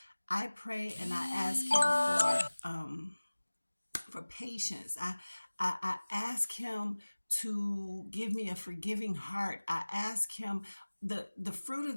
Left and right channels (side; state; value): both; inverted; correlation -1.00